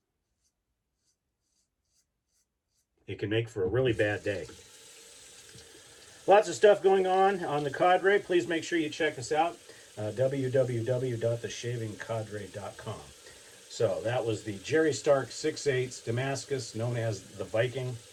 It can make for a really bad day. Lots of stuff going on the Cadre. Please make sure you check us out. www.theshavingcadre.com. So that was the Jerry Stark 6/8 Damascus, known as the Viking.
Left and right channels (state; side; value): identical; both; correlation 1.00